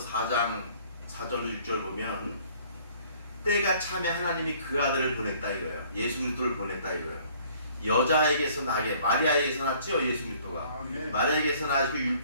4절로 6절 보면 때가 참에 하나님이 그 아들을 보냈다 이거예요. 예수 그리스도를 보냈다 이거예요. 여자에게서 나게 마리아에게서 났죠. 예수 그리스도가 마리아에게서 나시고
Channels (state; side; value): inverted; both; correlation -0.57